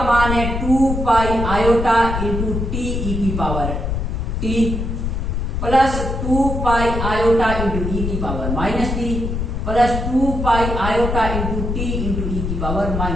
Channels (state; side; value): noise; left; rumble, 2 dB below the sound